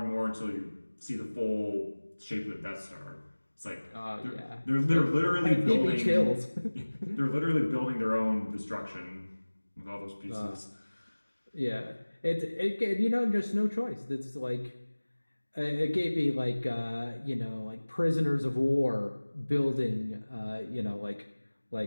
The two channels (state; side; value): inverted; both; correlation -1.00